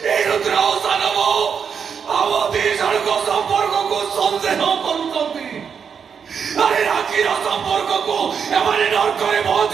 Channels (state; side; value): quieter; left; 6.8 dB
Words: संपर्क को संदेह अरे राखीर संपर्क को एमाने नरकरे